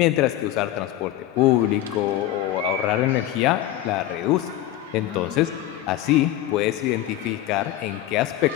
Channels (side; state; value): right; quieter; 13.4 dB